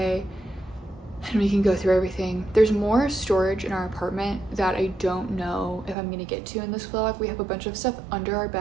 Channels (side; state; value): left; drops out; at 6.0 s